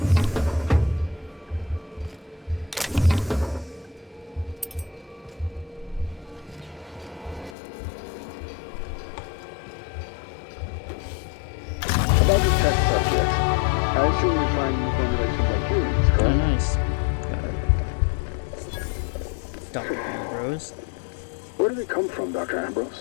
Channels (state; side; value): drops out; right; at 7.6 s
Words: About the test subjects, I assume you find new formulations like humans, Oh, correct? nice. Got it. Dr. Ambrose. Where do they come from, Dr.